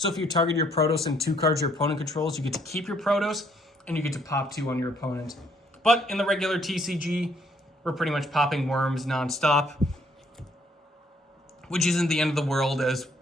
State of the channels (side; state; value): both; normal; correlation 0.67